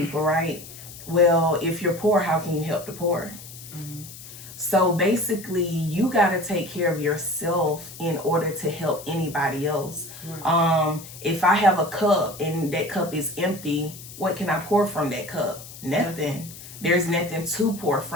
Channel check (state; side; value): noise; left; hiss, 15 dB below the sound